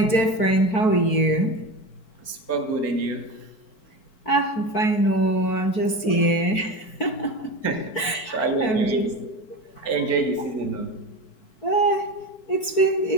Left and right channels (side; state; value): right; late; 4.5 ms